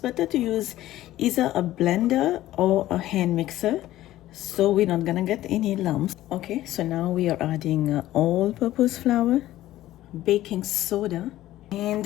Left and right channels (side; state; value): right; quieter; 14.8 dB